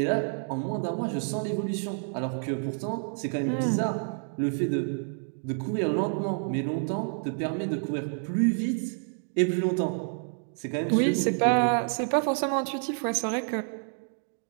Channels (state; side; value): silent; left; 59 dB below the other